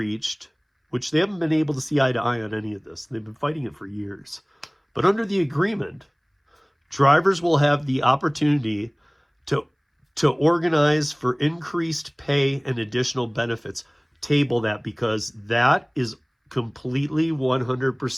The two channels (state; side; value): identical; both; correlation 1.00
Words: which they haven't been able to see eye to eye on any of this, they've been fighting it for years. But under the agreement, drivers will have the opportunity to organize for increased pay and additional benefits. Table that, because that is completely